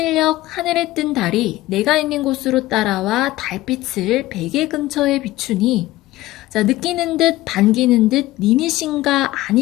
하늘에 뜬 달이 내가 있는 곳으로 따라와 달빛을 베개 근처에 비추니 자, 느끼는 듯 반기는 듯 님이신가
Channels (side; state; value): right; quieter; 17.0 dB